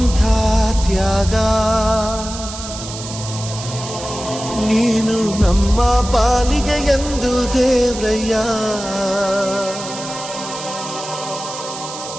ತ್ಯಾಗ, ನೀನು ನಮ್ಮ ಪಾಲಿಗೆ ಎಂದು ದೇವ್ರಯ್ಯ.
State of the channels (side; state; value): right; noise; hiss, 10 dB below the sound